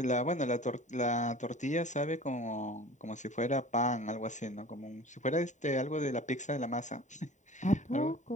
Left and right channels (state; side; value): late; right; 0.35 ms